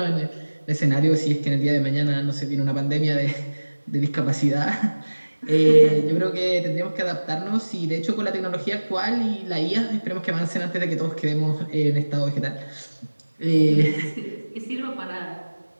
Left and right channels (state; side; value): inverted; both; correlation -1.00